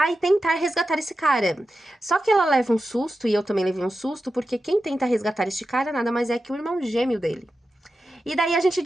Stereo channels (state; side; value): normal; both; correlation 0.91